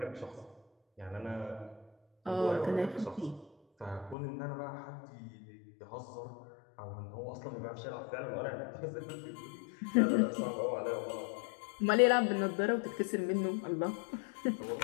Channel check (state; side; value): drops out; right; at 4.2 s